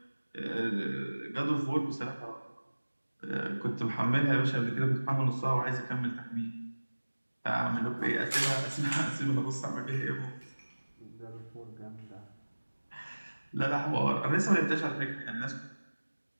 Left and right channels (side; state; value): both; inverted; correlation -1.00